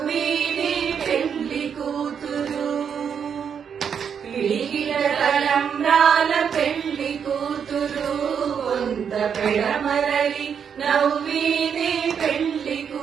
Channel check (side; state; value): left; quieter; 7.4 dB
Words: పెండి కూతురు. పిడికిట తలంబ్రాల పెండి కూతురు, కొంత పెడమరలి నవ్వేనే పెండి